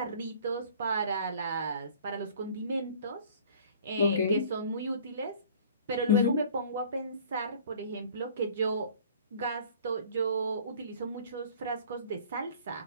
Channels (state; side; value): inverted; both; correlation -0.49